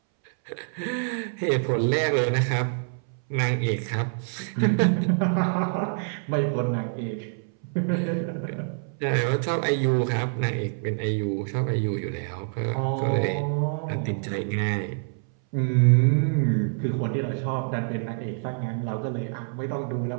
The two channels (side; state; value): left; silent; 61 dB below the other